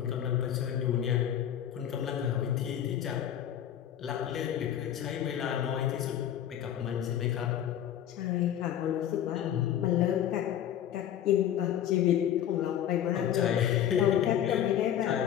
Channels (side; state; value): right; quieter; 10.5 dB